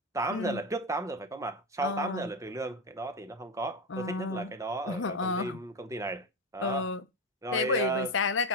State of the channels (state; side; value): normal; both; correlation 0.15